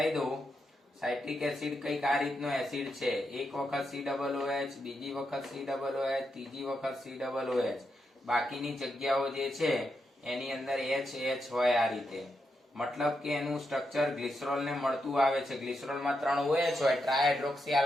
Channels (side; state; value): both; normal; correlation 0.84